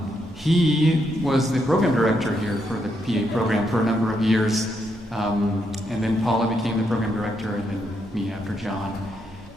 He was the program director here for the PA program for a number of years, and then Paula became the program director, and then me after John.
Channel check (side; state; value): both; normal; correlation 0.79